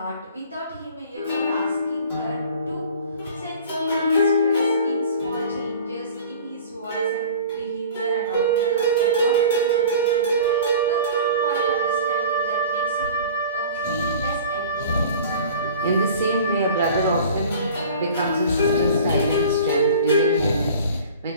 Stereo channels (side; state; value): both; inverted; correlation -0.43